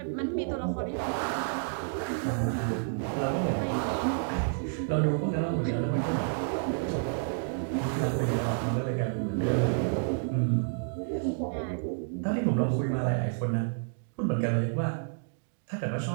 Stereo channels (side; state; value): left; silent; digital silence